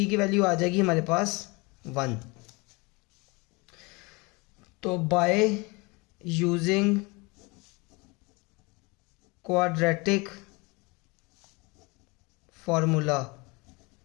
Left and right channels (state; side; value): quieter; right; 26.9 dB